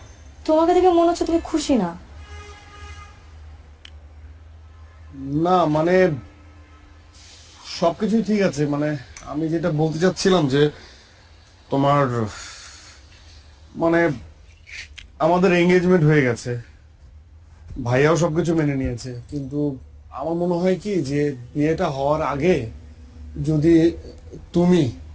তোমাকে দেখে মনে হচ্ছে তুমি খুশি না। না মানে সবকিছুই ঠিক আছে, মানে আমি যেটা বলতে চাচ্ছিলাম যে তোমার মানে আমাদের এঙ্গেজমেন্ট হয়ে গেছে, ভাইয়াও সবকিছু মেনে নিয়েছে, কিন্তু আমার মনে হয় কি যে বিয়েটা হওয়ার আগে যদি তুমি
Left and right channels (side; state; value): both; identical; correlation 1.00